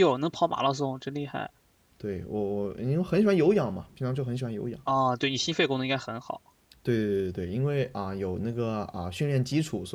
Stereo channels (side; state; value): both; identical; correlation 1.00